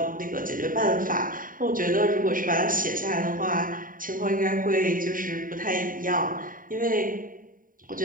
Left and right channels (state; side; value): late; left; 0.40 ms